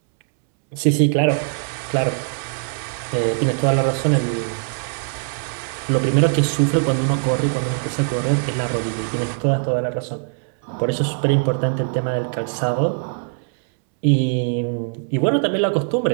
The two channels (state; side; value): silent; left; 64 dB below the other